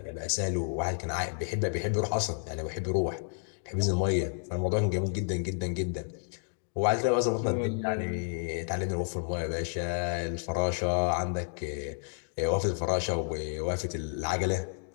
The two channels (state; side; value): silent; right; digital silence